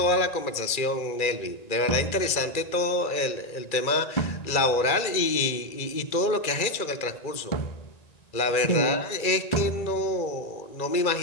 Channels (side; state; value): right; late; 1.9 ms